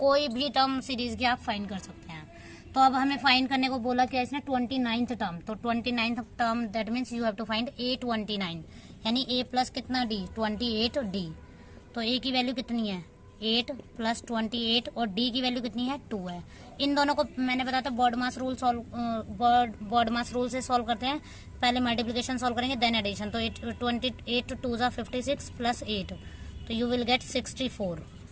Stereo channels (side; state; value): both; identical; correlation 1.00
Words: भी टर्म सीरीज की आप फाइंड कर सकते हैं। तो अब हमें फाइंड करने को बोला क्या इसने 29th टर्म, तो 29th term that means you have to find A29, यानी A प्लस कितना D 28D। तो A की वैल्यू कितनी है 8 प्लस 28 और D की वैल्यू कितनी है 2 है। इन दोनों को मैंने बताया था बॉड मास रूल से सॉल्व करते हैं। पहले मल्टीप्लिकेशन सॉल्व करेंगे देन एडिशन। तो 28 2 ज़ा 56 प्लस 8, तो यू विल गेट 64।